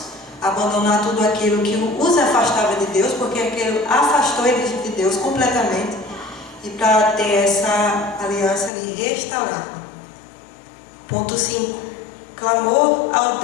abandonar tudo aquilo que os afastava de Deus, porque aquilo afastou eles de Deus completamente, e para ter essa aliança ali restaurada. Ponto 5. Clamor ao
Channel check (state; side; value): drops out; right; at 8.7 s